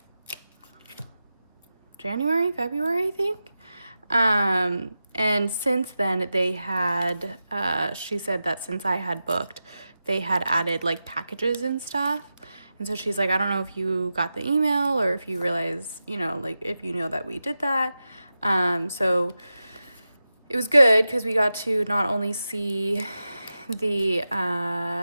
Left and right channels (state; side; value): inverted; both; correlation -0.92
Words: January, February, I think. And since then they had, she said that since I had booked, they had added like packages and stuff. And so she's like, I don't know if you got the email or if you realize, you know, like if you know that we did that. So it was good because we got to not only see the